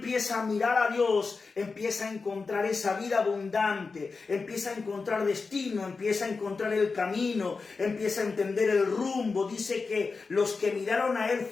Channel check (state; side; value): quieter; right; 4.4 dB